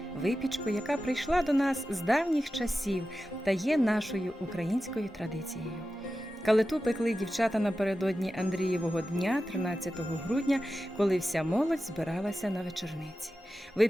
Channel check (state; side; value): normal; both; correlation 0.93